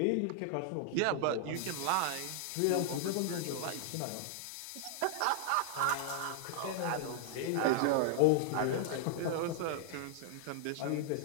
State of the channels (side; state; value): both; different; correlation -0.01